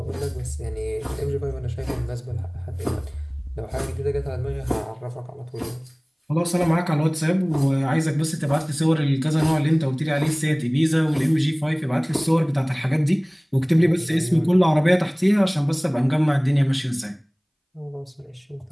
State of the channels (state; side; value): identical; both; correlation 1.00